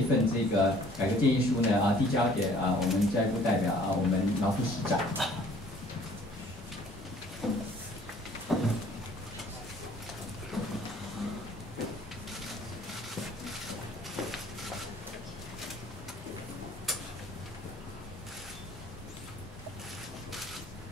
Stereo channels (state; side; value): normal; both; correlation 0.55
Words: 份这个改革建议书呢递交给我们教育部代表我们劳副市长。